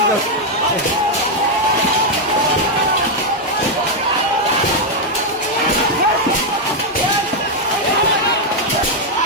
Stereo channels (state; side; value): normal; both; correlation 0.00